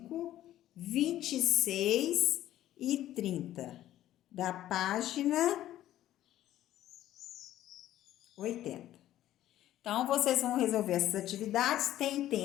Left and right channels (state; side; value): quieter; right; 13.2 dB